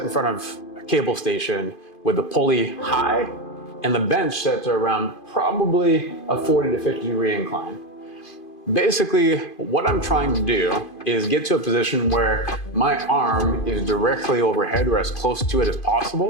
in front of a cable station with the pulley high and the bench set to around probably a 40 to 50 degree incline. Basically, what I'm trying to do is get to a position where my arm is directly overhead or as close to it as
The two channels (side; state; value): right; late; 2.5 ms